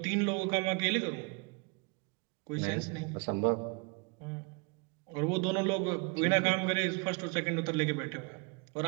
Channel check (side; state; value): left; quieter; 30.4 dB